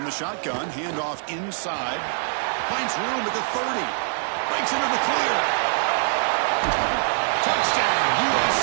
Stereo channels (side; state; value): left; silent; digital silence